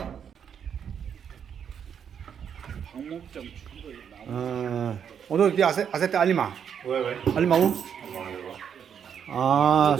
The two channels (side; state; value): left; quieter; 8.0 dB